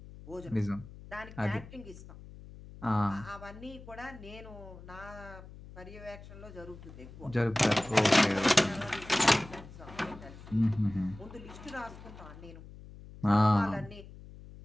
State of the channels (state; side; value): noise; left; hum, 16 dB below the sound